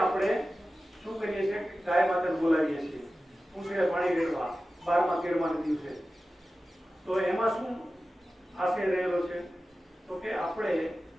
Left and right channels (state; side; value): normal; both; correlation 0.94